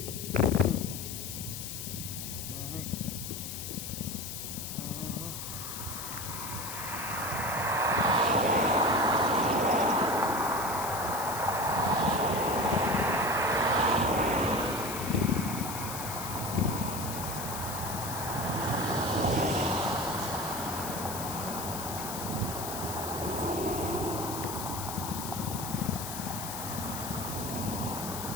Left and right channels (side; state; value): left; noise; hiss, 7 dB below the sound